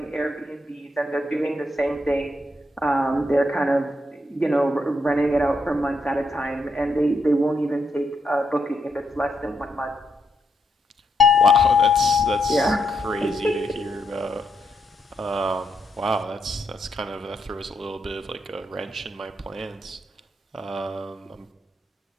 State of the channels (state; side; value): normal; both; correlation 0.79